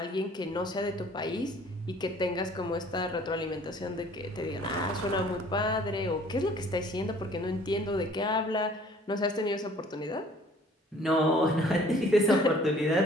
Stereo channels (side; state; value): both; normal; correlation 0.54